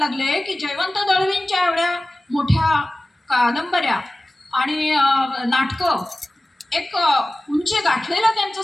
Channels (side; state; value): both; normal; correlation 0.97